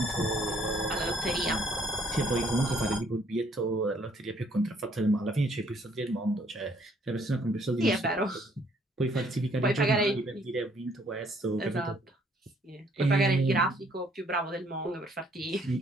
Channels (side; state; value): both; normal; correlation 0.64